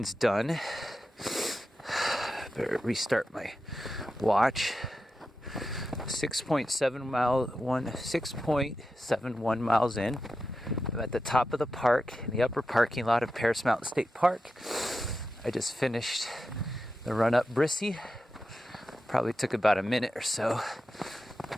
done. Better restart my watch. 6.71 miles in. I'm at the top of the park in the upper parking lot of Paris Mountain State Park. I just finished the run up Brissy. Probably took about a minute or so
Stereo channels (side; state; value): both; normal; correlation 0.90